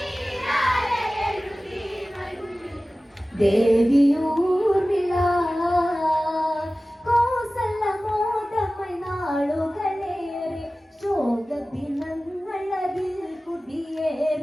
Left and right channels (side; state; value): both; normal; correlation 0.97